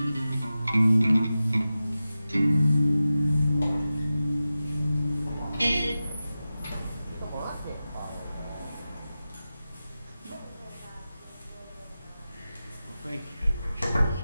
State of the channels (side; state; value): both; inverted; correlation -0.94